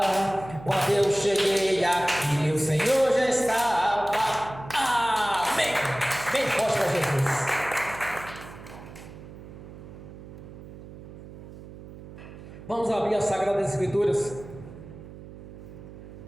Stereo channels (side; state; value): right; noise; hum, 15 dB below the sound